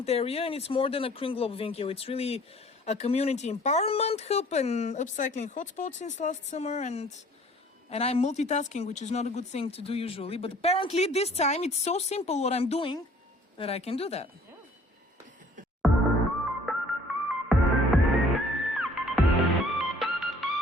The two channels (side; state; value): both; normal; correlation 0.55